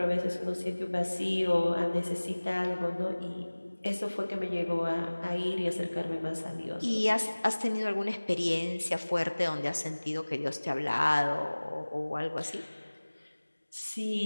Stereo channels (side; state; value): both; inverted; correlation -1.00